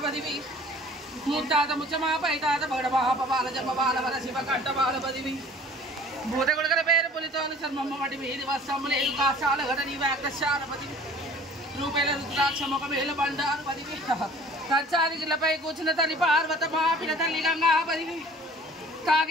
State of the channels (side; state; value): both; normal; correlation 0.49